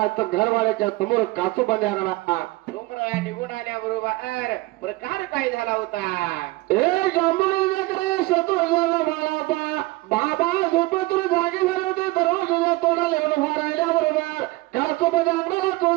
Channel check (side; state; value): left; quieter; 21.0 dB